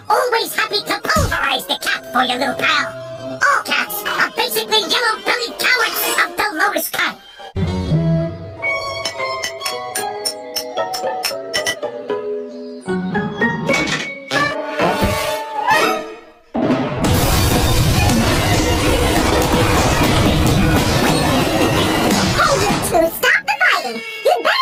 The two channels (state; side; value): identical; both; correlation 1.00